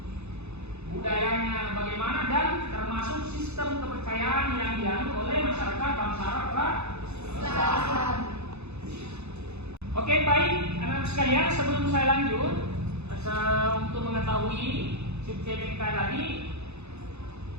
budayanya bagaimana, dan termasuk sistem kepercayaan yang dianut oleh masyarakat bangsa Arab pra-Islam. Oke, baik anak-anak sekalian, sebelum saya lanjut untuk mengetahui sub CPMK tadi,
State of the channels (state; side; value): late; left; 0.81 ms